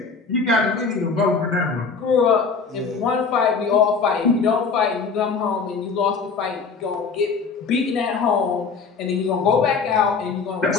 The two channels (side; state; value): right; quieter; 5.1 dB